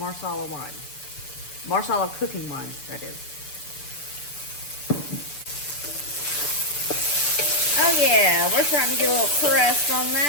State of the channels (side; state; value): right; late; 6.8 ms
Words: wine. Marsala cooking wine, that is. Oh yeah, we're starting to get a little crust on